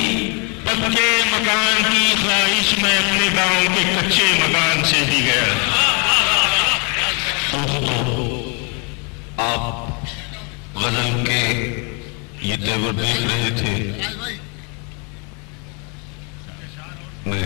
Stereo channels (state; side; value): quieter; right; 34.3 dB